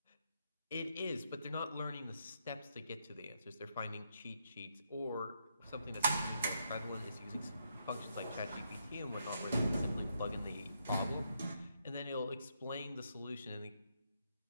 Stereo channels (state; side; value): inverted; both; correlation -0.77